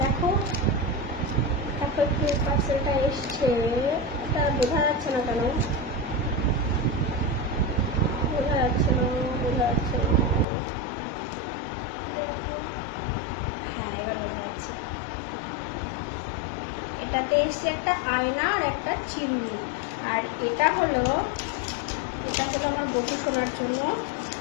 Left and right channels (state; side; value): drops out; right; at 10.5 s